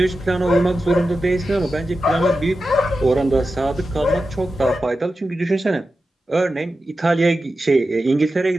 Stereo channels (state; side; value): normal; both; correlation 0.92